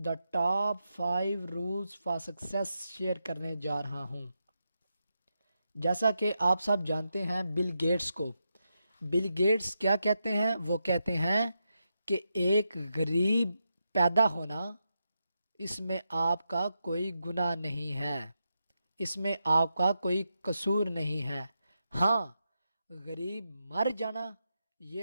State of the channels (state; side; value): inverted; both; correlation -0.86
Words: top 5 rules for success share करने जा रहा हूँ। जैसा कि आप सब जानते हैं बिल गेट्स को। बिल गेट्स क्या कहते हैं? वो कहते हैं कि एक गरीब पैदा होना, इसमें आपका कोई गुनाह नहीं है, इसमें आपका कोई कसूर नहीं है। हाँ, गरीब मर जाना